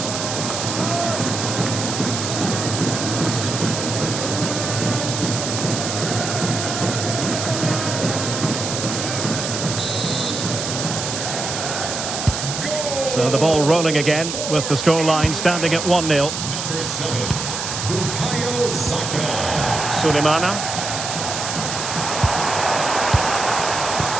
So the ball rolling again with the scoreline standing at 1-0. Number 7, Bukayo Saka. Sulemana.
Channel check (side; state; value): right; noise; hiss, 4 dB below the sound